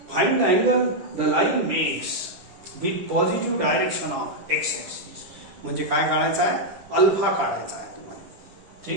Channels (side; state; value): left; late; 10 ms